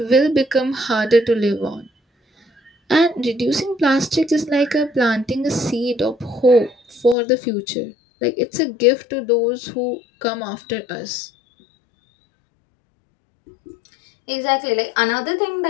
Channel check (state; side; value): drops out; right; at 7.2 s